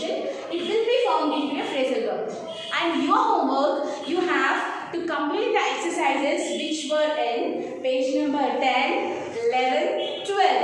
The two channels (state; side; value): identical; both; correlation 1.00